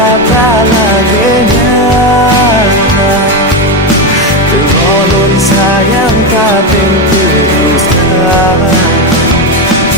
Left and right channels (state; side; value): normal; both; correlation 0.12